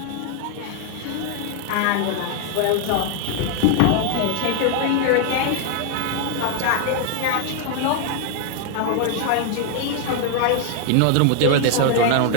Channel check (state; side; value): different; both; correlation 0.00